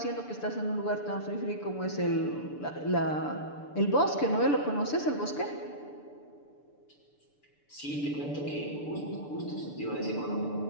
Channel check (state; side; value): late; right; 6.8 ms